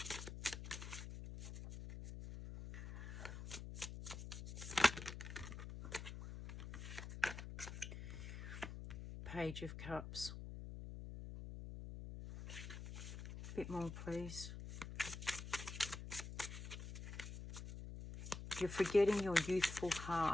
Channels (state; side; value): noise; left; hum, 8 dB below the sound